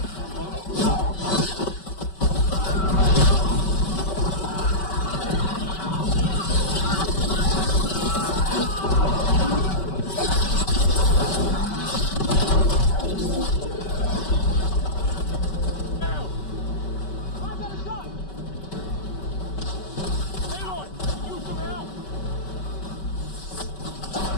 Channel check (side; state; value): right; late; 5.2 ms